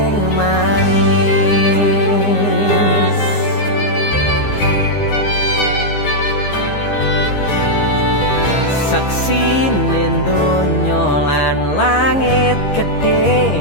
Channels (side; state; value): right; late; 15 ms